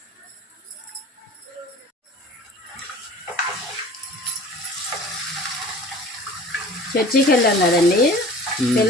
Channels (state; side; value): normal; both; correlation 0.44